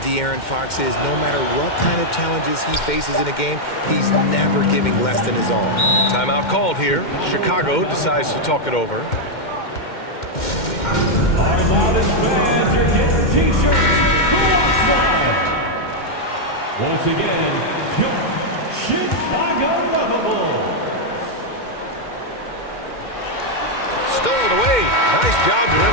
Fox is. No matter what kind of challenges he faces in a game, he's never giving less than his all. Timeout called here. Chicago decides to talk it over. Our loudest fans are getting t-shirts. Once again, your Chicago Lovable. Stolen away. Nice job to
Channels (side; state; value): right; late; 2.1 ms